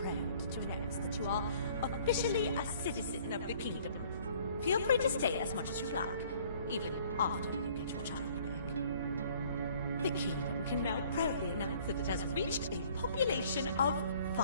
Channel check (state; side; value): inverted; both; correlation -0.56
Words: to announce that you are officially a citizen of the kingdom. Feel free to stay as much as you like, even after you get your child back. The kingdom can now proudly announce that it has reached a population of